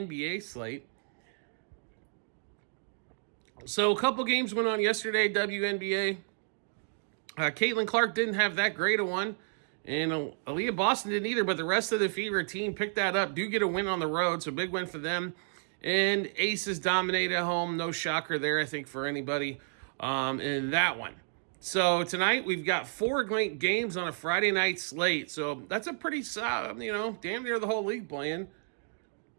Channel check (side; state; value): left; silent; digital silence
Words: slate. So a couple games went on yesterday, WNBA. Caitlin Clark didn't have that great a one. And Aaliyah Boston didn't either, but the rest of the Fever team picked that up. Do get a win on the road, so big win for them. And Aces dominate at home. No shocker there, I think, for anybody in that one. So tonight we've got 4 games on a Friday night slate. So that's a pretty, damn near the whole league playing.